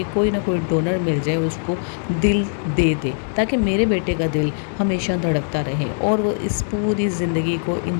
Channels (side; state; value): right; silent; digital silence